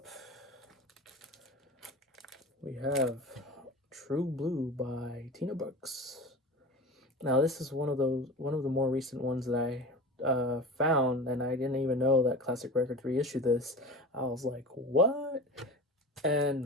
we have True Blue by Tina Brooks. Now this is one of the more recent ones that I found, and I didn't even know that Classic Records reissued this. I was like, what?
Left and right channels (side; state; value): both; normal; correlation 0.32